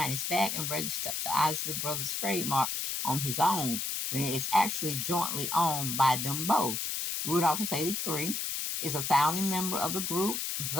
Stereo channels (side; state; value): left; noise; hiss, 2 dB below the sound